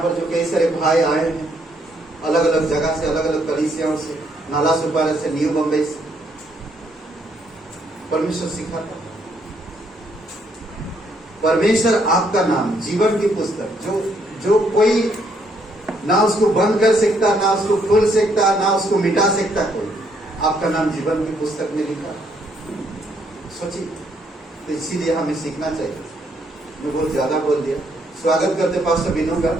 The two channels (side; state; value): both; normal; correlation 0.71